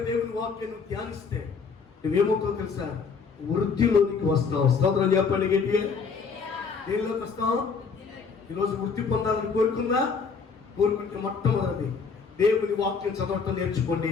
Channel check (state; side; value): quieter; right; 5.3 dB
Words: దేవుని వాక్యాన్ని ధ్యానిస్తే నువ్వేమవుతావు తెలుసా? వృద్ధిలోనికి వస్తావు. స్తోత్రం చెప్పండి గట్టిగా. దేనిలోకి వస్తావు? ఈరోజు వృద్ధి పొందాలని కోరుకుంటే మొట్టమొదటి దేవుని వాక్యం చదవటం నేర్చుకోండి.